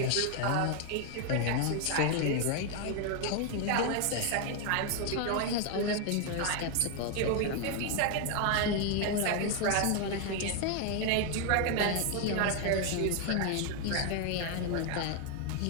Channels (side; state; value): both; different; correlation 0.00